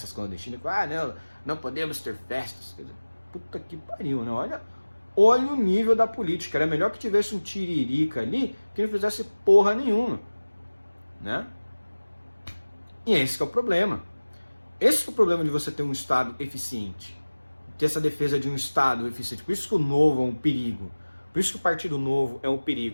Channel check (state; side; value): inverted; both; correlation -1.00